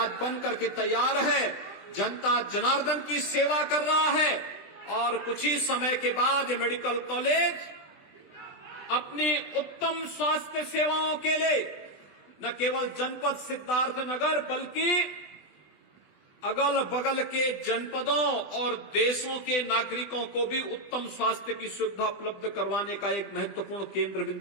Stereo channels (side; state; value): right; late; 20 ms